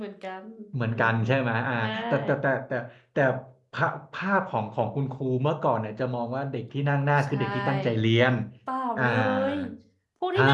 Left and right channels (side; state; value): both; identical; correlation 1.00